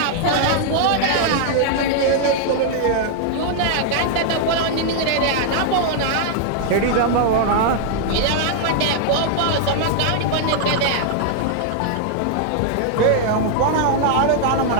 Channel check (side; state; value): both; different; correlation -0.01